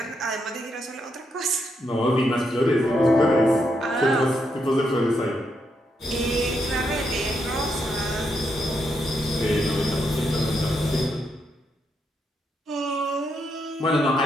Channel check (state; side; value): normal; both; correlation 0.80